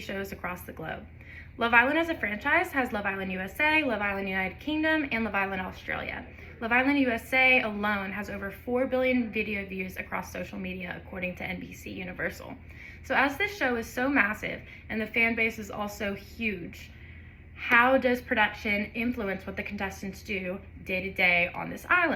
shows across the globe. Love Island as a franchise has Love Island USA, Love Island United Kingdom, and Love Island Australia. Love Island USA alone has over 4 billion video views across social media, according to NBC Universal. So as this show is so massive and the fan base is also huge, how does production influence what the contestants do day to day on this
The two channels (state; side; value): identical; both; correlation 1.00